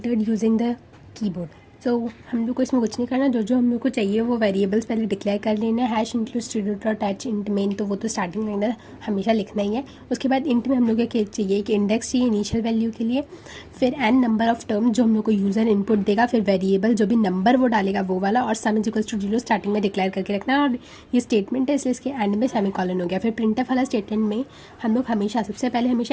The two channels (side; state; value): both; identical; correlation 1.00